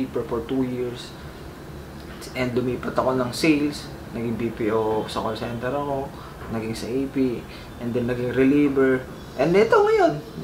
for 2 years. And lumipat ako ng sales, naging BPO sa call center ako, naging sa AP, and then naging reliever. And ito ngayon,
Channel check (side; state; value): both; identical; correlation 1.00